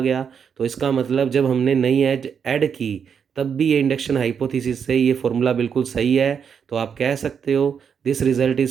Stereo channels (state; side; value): quieter; left; 7.1 dB